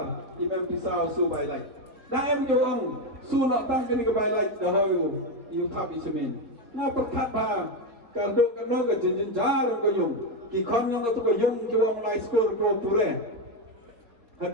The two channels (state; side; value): late; left; 3.6 ms